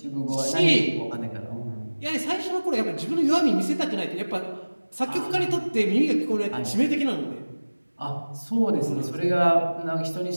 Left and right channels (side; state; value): both; inverted; correlation -1.00